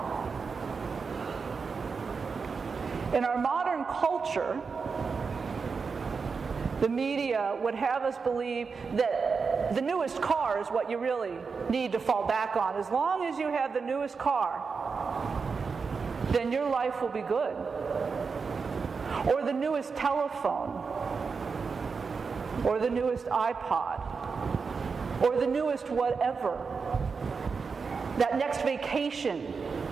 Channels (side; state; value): left; quieter; 5.1 dB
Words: In our modern culture, the media would have us believe that the newest car is what you really need to fall back on. As long as you have the newest car, then your life will be good. Or the newest telephone, or the newest iPod, or the newest whatever. That next vacation.